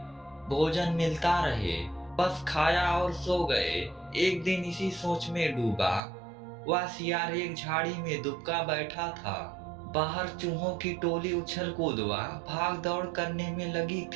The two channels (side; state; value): left; drops out; at 6.0 s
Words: भोजन मिलता रहे। बस खाया और सो गए। एक दिन इसी सोच में डूबा। वह सियार एक झाड़ी में दुबका बैठा था। बाहर चूहों की टोली उछल कूद व भाग दौड़ करने में लगी